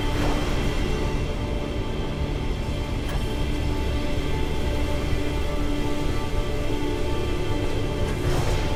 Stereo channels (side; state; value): both; identical; correlation 1.00